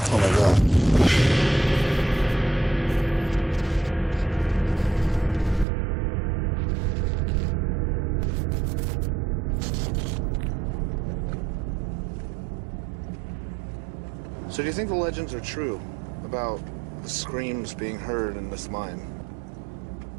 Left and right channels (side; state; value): left; drops out; at 5.7 s